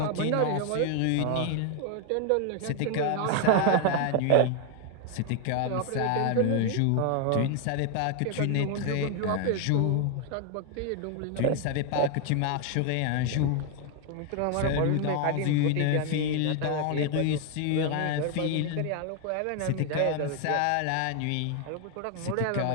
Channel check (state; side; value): different; both; correlation 0.01